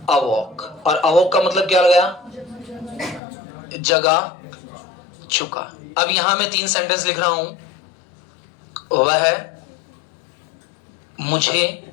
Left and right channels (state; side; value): drops out; right; at 3.2 s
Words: अवॉक। और अवॉक का मतलब क्या लगाया? जगा चुका। अब यहां मैं 3 सेंटेंस लिख रहा हूं। वह मुझे